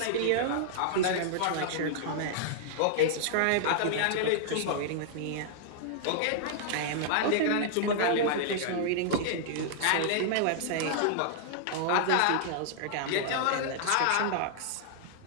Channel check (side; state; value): both; different; correlation -0.01